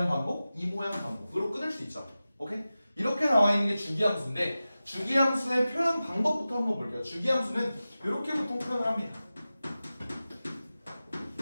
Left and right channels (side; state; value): both; inverted; correlation -0.95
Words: 반복 이 모양 반복으로 끊을 수 있죠. 오케이? 이렇게 나와 있는 게 주기함수인데 주기함수의 표현 방법부터 한번 볼게요. 주기함수는 이렇게 보통 표현을 합니다.